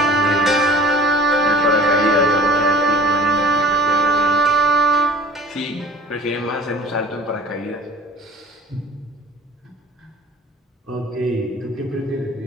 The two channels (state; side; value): normal; both; correlation 0.45